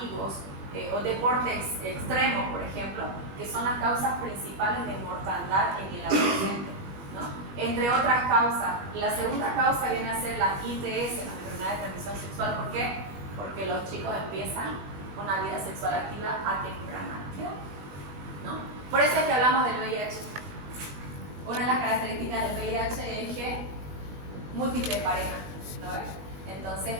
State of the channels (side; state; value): left; late; 21 ms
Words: o deportes extremos, por ejemplo, que son las causas principales de mortandad en el adolescente, ¿no? Entre otras causas. La segunda causa viene a ser la ITS, la enfermedad de transmisión sexual. ¿Por qué? Porque los chicos empiezan una vida sexual activa a temprana edad, ¿no? Por eso es que hablamos del VIH. Una de las características del VIH es que múltiples parejas, ¿no? Entonces,